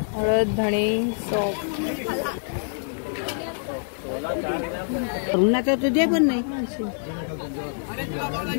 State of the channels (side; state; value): right; silent; 61 dB below the other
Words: हळद धणे सॉप. उन्हाचं तुझे पण नाही.